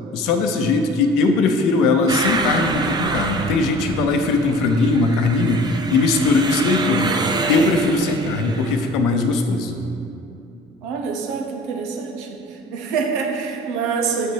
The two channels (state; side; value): normal; both; correlation 0.44